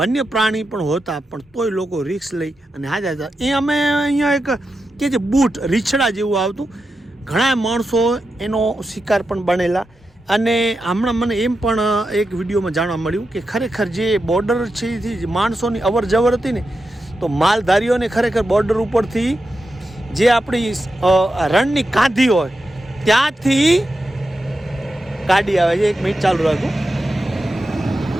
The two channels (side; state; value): both; normal; correlation 0.89